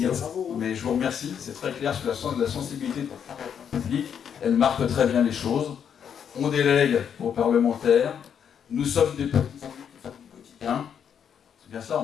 Mais je vous remercie, c'est très clair sur la sensibilité publique. Elle marque très bien les choses. On délègue aux parlementaires. Nous sommes des petits élus qui font du quotidien. C'est bien ça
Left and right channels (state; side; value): quieter; right; 8.0 dB